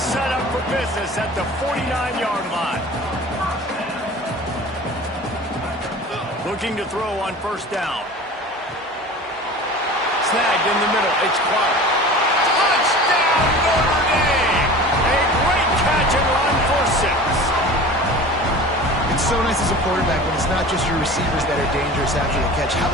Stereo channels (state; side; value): normal; both; correlation 0.39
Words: up for business at the 49-yard line. Looking to throw on 1st down. Snagged in the middle, it's Clark. Touchdown, Notre Dame! A great catch and run for 6. It's so nice as a quarterback when it's not just your receivers that are dangerous after the catch. How